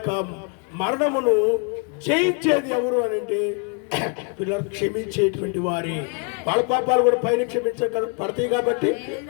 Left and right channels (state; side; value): quieter; right; 37.9 dB